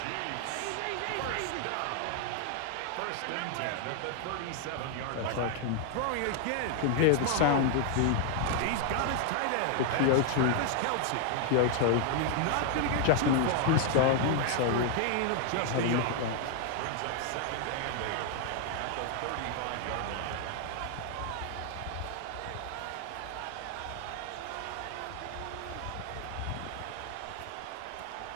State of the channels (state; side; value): different; both; correlation 0.00